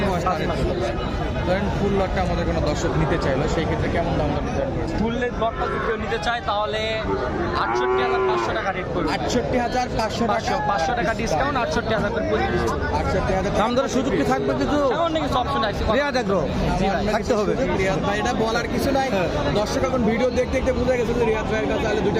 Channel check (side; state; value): both; identical; correlation 1.00